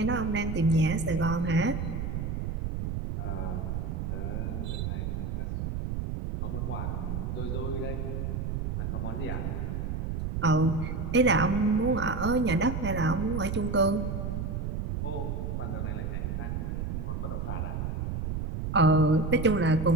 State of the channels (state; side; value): noise; right; rumble, 2 dB below the sound